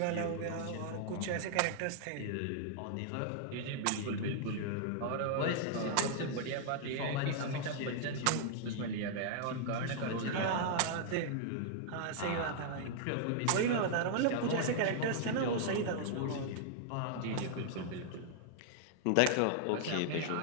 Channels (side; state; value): both; different; correlation -0.01